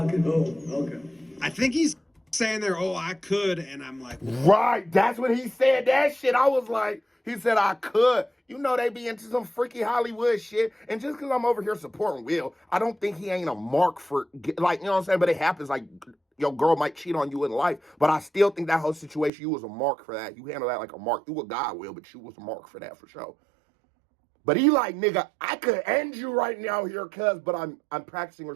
I think he's saying there, oh, I could. And I'm like, Right. That's when he said that shit. I was like, he said I could. You know they be into some freaky Hollywood shit. And just because I'm over here supporting Will, I don't think he ain't a mark for, like, you know what I'm saying? But it happens, like, your girl might cheat on you in life. But I still think that whole situation, you was a mark for that. You handle that like a mark. You a guy, Will, but you was a mark for that for sure. But he like, nigga, I could end you right now here, cuz, but I'm practicing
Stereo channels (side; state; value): left; drops out; at 19.3 s